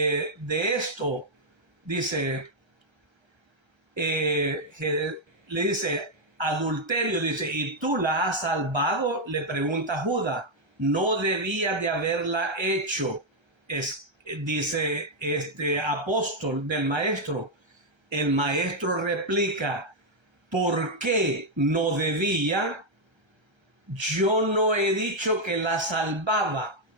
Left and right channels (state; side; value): late; left; 1.3 ms